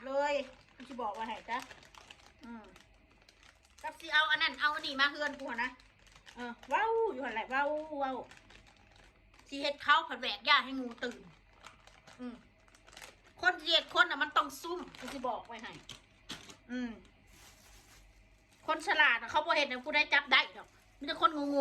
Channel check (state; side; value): identical; both; correlation 1.00